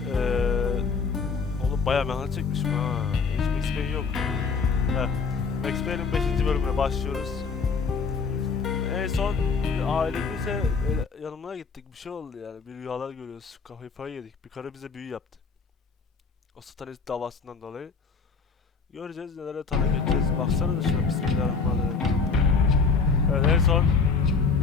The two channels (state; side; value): quieter; right; 5.0 dB